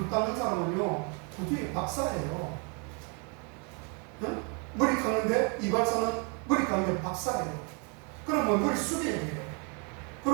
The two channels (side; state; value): left; quieter; 35.5 dB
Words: 닦는 사람은요, 구두의 박사예요. 응? 머리 깎는데 이발사는 머리 깎는 박사예요. 그러면 머리 숙여야 돼요.